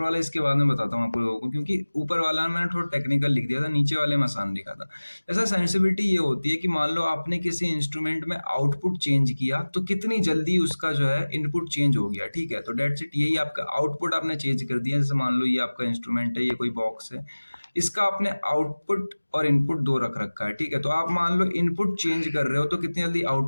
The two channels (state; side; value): inverted; both; correlation -1.00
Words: वाला इसके बाद में बताता हूँ आप लोगों को, क्योंकि ऊपर वाला मैंने थोड़ा टेक्निकल लिख दिया था, नीचे वाले में आसान लिखा था। ऐसा सेंसिटिविटी ये होती है कि मान लो आपने किसी इंस्ट्रूमेंट में आउटपुट चेंज किया तो कितनी जल्दी उसका जो है इनपुट चेंज हो गया। ठीक है, तो डेट्स इट, यही आपका आउटपुट आपने चेंज कर दिया। जैसे मान लो ये आपका इंस्ट्रूमेंट है, ये कोई बॉक्स है, इसका आपने आउटपुट और इनपुट दो रख रखा है। ठीक है, तो आप मान लो इनपुट चेंज कर रहे हो तो कितनी जल्दी